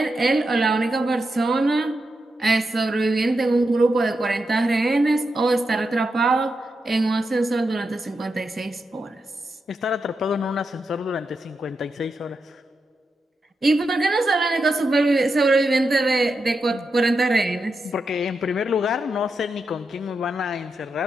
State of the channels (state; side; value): normal; both; correlation 0.86